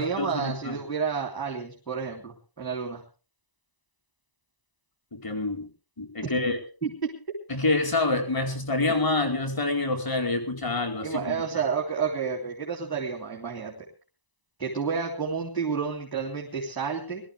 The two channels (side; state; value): right; late; 1.0 ms